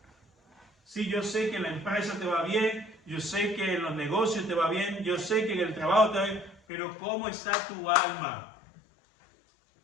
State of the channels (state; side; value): drops out; right; at 6.6 s